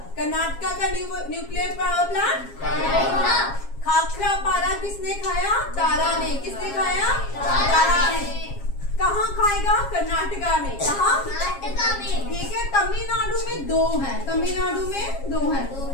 कर्नाटका का न्यूक्लियर पावर प्लांट खाखरा पारा किसने खाया? तारा ने। किसने खाया? तारा ने। कहाँ खाएगा? कर्नाटका में। कहाँ? ठीक है। तमिलनाडु में 2 है, तमिलनाडु में 2 है,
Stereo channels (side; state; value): right; late; 7.4 ms